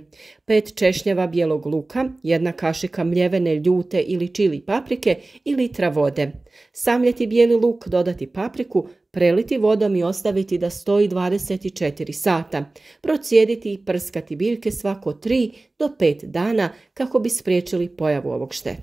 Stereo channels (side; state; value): left; quieter; 3.0 dB